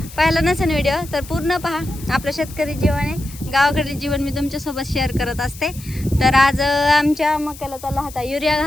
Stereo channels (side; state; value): left; noise; hiss, 17 dB below the sound